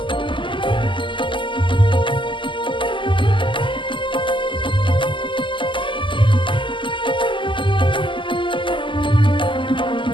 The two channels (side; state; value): right; late; 0.24 ms